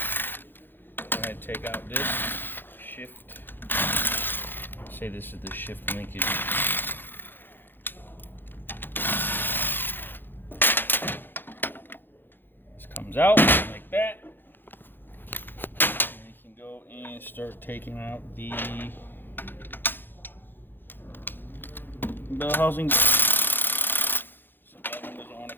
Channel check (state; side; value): late; right; 0.097 ms